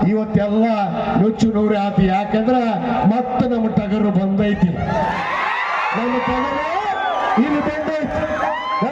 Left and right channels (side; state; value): both; identical; correlation 1.00